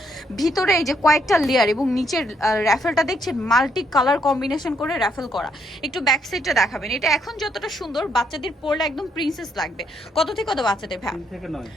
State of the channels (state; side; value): normal; both; correlation 0.73